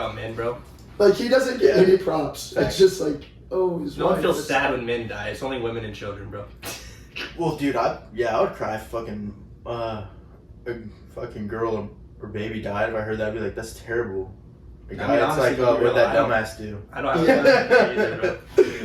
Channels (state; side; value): identical; both; correlation 1.00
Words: men, bro. Like he doesn't get Yeah. any props. It's just like, oh, his No one wife. feels sad when men die. It's only women and children, bro. Well, dude, I would cry if fucking a fucking girl or baby died. If I heard that, I'd be like, that's terrible. Like, I mean, it's honestly, like to be what real, that I don't- dumbass do. I don't have time for that either,